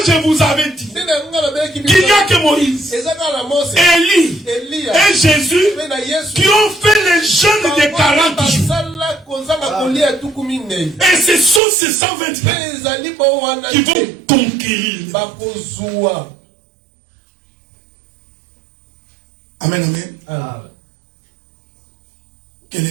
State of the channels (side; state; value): left; drops out; at 11.6 s